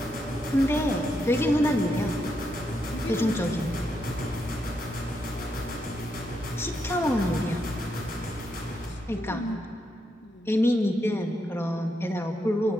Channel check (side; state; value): both; normal; correlation 0.81